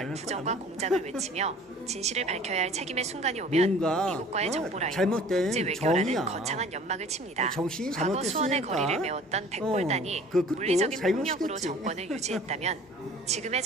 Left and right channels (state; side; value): normal; both; correlation 0.48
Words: 거야, 부정과 아마. 공작을 외치며 진실을 밝혀야 할 책임의 순간이 오면 뭔가, 미국과의 정보라인, 잘못된 국제 외교라는 정의야. 거창한 연막을 칩니다. 정신이 과거 수원의 잘못됐으니까. 거리를 메웠던 백골단이 그 끝도 물리적인 폭력으로 잘못이겠지. 정권을 유지했다면 지금의